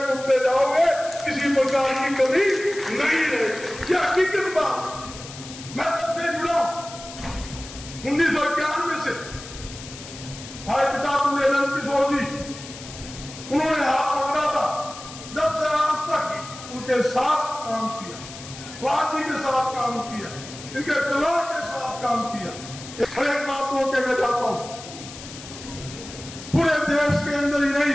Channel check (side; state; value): left; noise; hiss, 14 dB below the sound